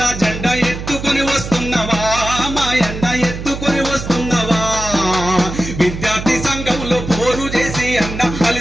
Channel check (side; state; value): right; noise; hum, 8 dB below the sound